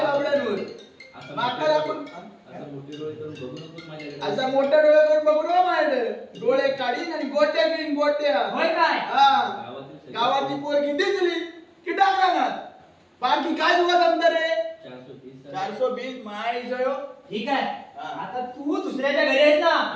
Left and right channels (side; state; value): both; identical; correlation 1.00